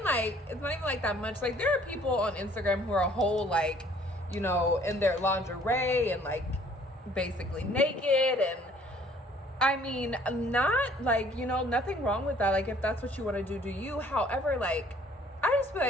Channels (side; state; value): both; normal; correlation 0.58